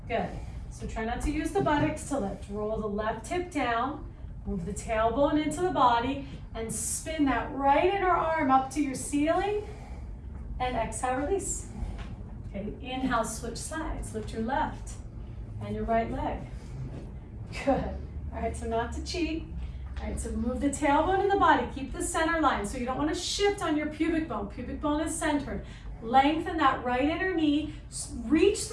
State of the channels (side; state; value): both; identical; correlation 1.00